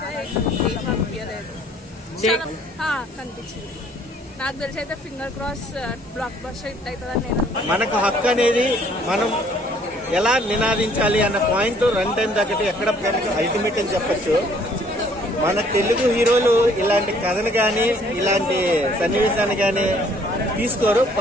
అనిపించలేదు, కనిపించింది. నాకు తెలిసి అయితే finger cross block buster hit అవుతుందని నేను. మనకు హక్కు అనేది మనం ఎలా నినాదించాలి అన్న పాయింట్ రన్ టైం దగ్గర ఎక్కడ అల్టిమేట్ అని చెప్పచ్చు. మన తెలుగు హీరోలు ఇలాంటి కథను కానీ ఇలాంటి సన్నివేశాన్ని కానీ తీసుకోరు.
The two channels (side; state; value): both; normal; correlation 0.61